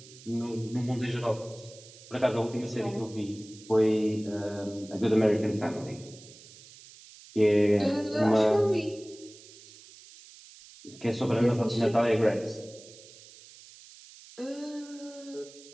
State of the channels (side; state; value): right; noise; hiss, 20 dB below the sound